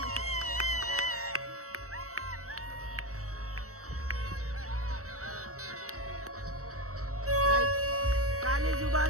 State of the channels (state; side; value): late; left; 0.65 ms